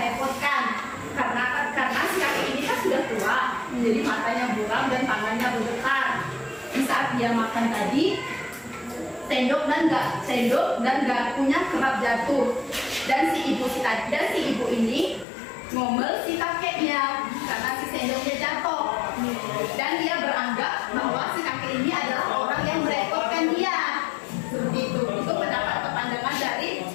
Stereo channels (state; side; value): drops out; right; at 15.2 s